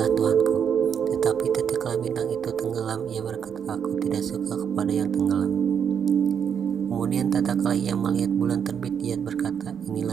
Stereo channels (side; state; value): left; quieter; 7.7 dB